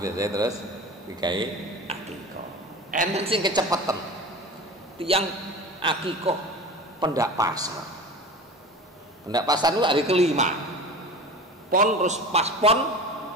terus digawe akikah. Enten sing kecepeten. Tiang akikah pendak pasar. Pendak pasar itu hari ke-5. Pon terus pas pon,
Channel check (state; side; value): normal; both; correlation 0.33